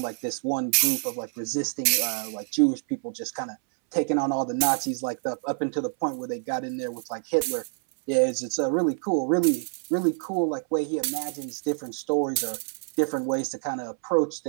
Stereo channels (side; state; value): left; silent; 60 dB below the other